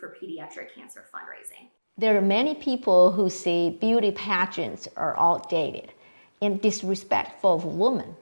for pediatric cancer fundraising. There are many people who say beauty pageants are outdated and disrespectful of women.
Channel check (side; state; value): both; inverted; correlation -1.00